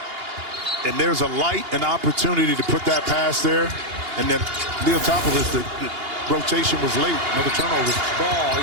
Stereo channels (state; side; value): late; left; 2.8 ms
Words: and there's a light, an opportunity to put that pass there, and then Leotopoulos, the rotation was late. Another turnover. Ball,